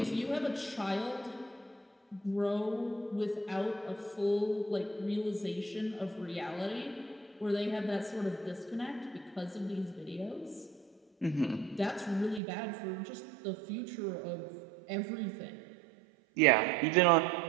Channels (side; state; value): left; drops out; at 12.4 s